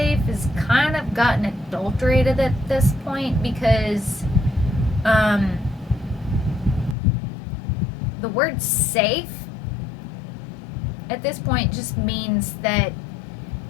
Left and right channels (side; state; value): right; drops out; at 7.0 s